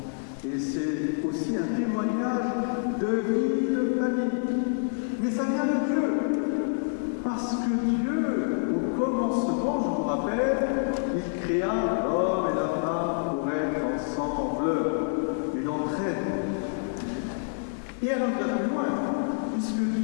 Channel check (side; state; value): right; silent; 58 dB below the other